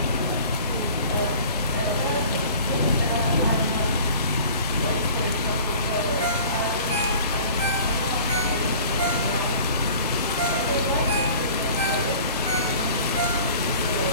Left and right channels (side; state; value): both; inverted; correlation -0.46